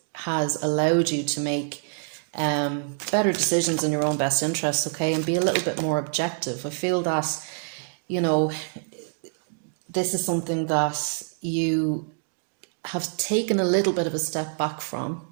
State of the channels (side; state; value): left; silent; 61 dB below the other